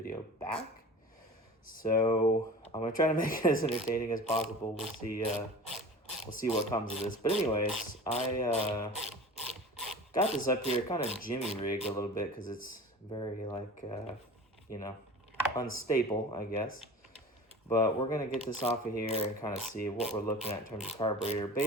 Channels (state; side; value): normal; both; correlation 0.37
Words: back. So I'm gonna try to make it as entertaining as possible. We'll see what comes of this. But anyways, I got this up here kind of jimmy rigged a little bit because it's very like unstable, I guess. But we're gonna get this off of here and kind of see what we're looking at in terms of carburetor.